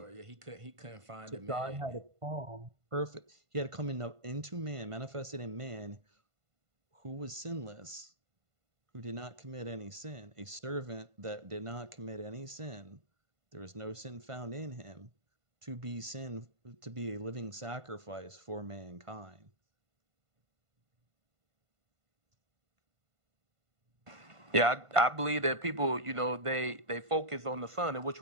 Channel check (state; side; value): late; left; 1.5 ms